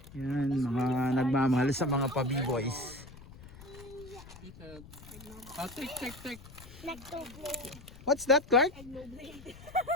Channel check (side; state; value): left; noise; rumble, 18 dB below the sound